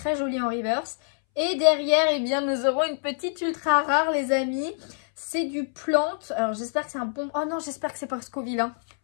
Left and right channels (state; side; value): silent; right; 61 dB below the other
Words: jolie en reverse. Et derrière, eh bien, nous aurons une petite ultra rare, les amis. C'est du plante. Alors, j'espère que c'est un bon... Oh non, j'espère que c'est pas Scoville. Hein.